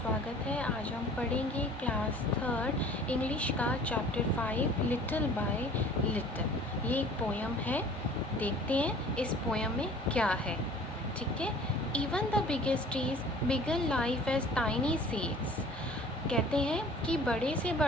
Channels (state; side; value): normal; both; correlation 0.48